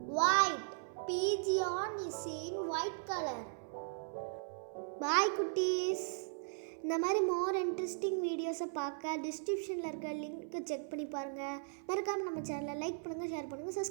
White. Pigeon is in white color. Bye குட்டீஸ். இந்த மாதிரி மோர் இன்ட்ரெஸ்டிங் வீடியோஸை பார்க்க டிஸ்கிரிப்ஷனில் இருக்க link check பண்ணி பாருங்கள். மறக்காமல் நம்ம சேனலை லைக் பண்ணுங்கள், ஷேர் பண்ணுங்கள்,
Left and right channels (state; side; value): silent; left; 53 dB below the other